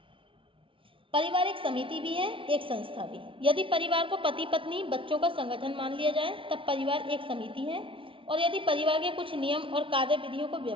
परिवार एक समिति भी है, एक संस्था भी। यदि परिवार को पति पत्नी बच्चों का संगठन मान लिया जाए तब परिवार एक समिति है, और यदि परिवार के कुछ नियम और कार्य विधियों को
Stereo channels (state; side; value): late; left; 0.25 ms